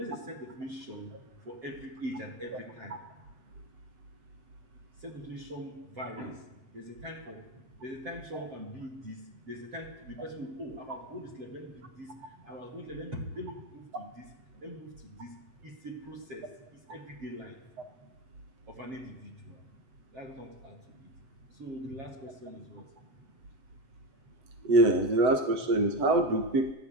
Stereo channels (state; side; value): late; left; 7.9 ms